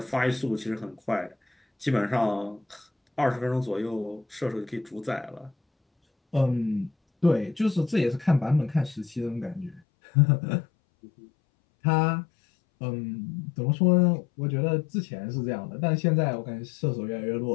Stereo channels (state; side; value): drops out; right; at 9.8 s